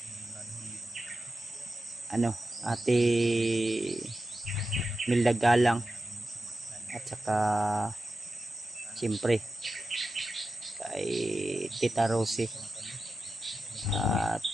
Ate Milda Galang, at saka siyempre kay Tita Rosie, at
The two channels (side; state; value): both; normal; correlation 0.92